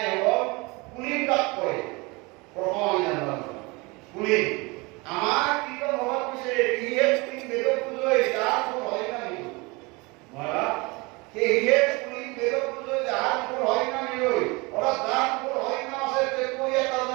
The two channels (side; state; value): left; quieter; 26.0 dB